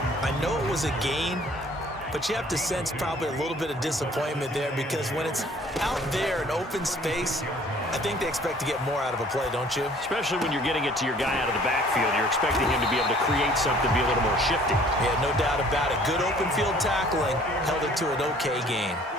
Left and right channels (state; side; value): normal; both; correlation 0.55